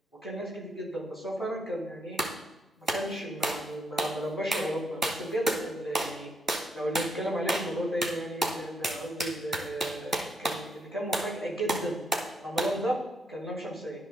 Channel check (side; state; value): both; normal; correlation 0.77